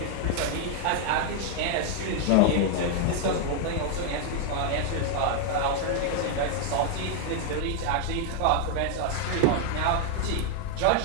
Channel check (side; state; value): both; different; correlation 0.00